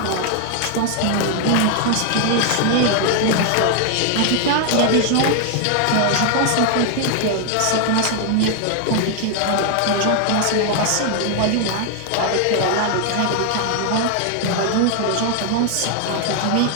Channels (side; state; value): both; different; correlation 0.00